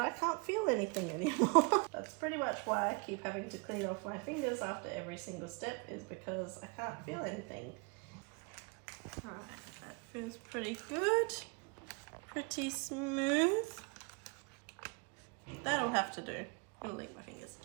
can't feel anything anymore. That's pretty much why I keep having to clean off my fingers after every single step, is because I can't feel anything. Alright, that feels pretty good. Pretty smooth. That'll have to do. I'm gonna lick my fingers.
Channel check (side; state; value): left; quieter; 30.9 dB